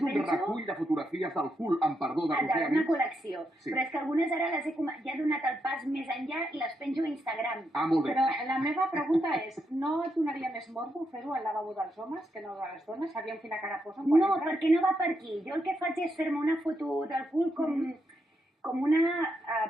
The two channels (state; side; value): normal; both; correlation 0.81